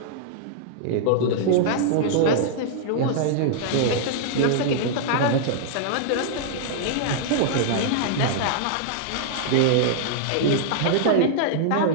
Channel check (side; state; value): both; different; correlation -0.01